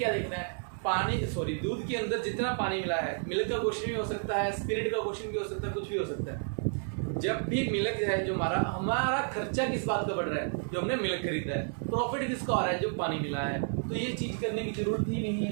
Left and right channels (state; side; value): silent; left; 57 dB below the other